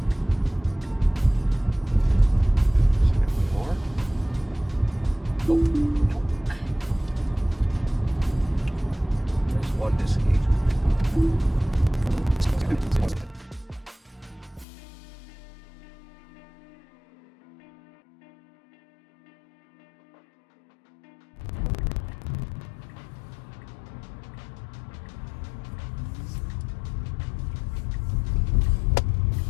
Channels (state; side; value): drops out; right; at 14.7 s